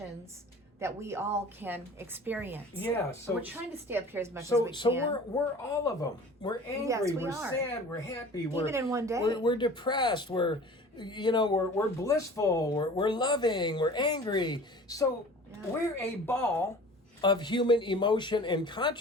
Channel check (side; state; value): both; normal; correlation 0.43